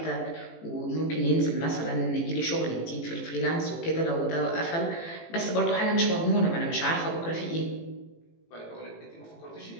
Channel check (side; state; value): right; late; 18 ms